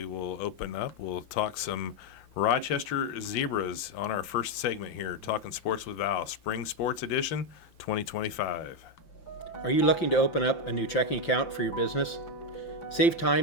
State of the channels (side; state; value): right; late; 5.8 ms